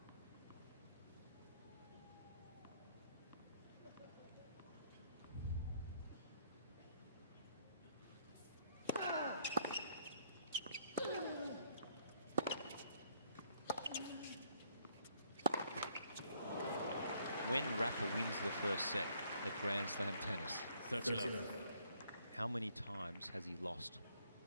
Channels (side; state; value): both; inverted; correlation -0.66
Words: When Rafa wins the first set at Grand Slam tennis, 30-love. how many times has he lost?